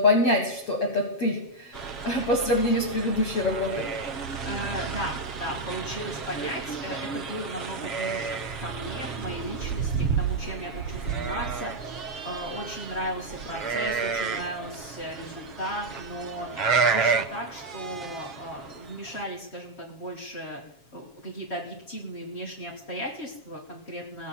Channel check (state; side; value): late; right; 7.3 ms